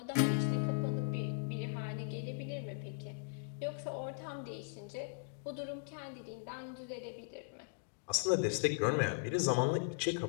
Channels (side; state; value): right; silent; digital silence